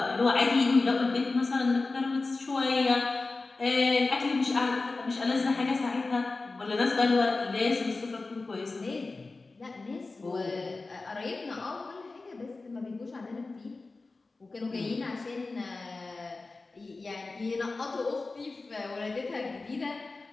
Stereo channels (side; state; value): right; quieter; 3.6 dB